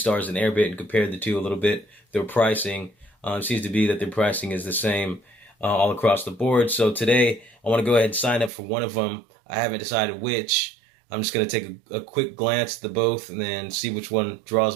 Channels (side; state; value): left; drops out; at 8.5 s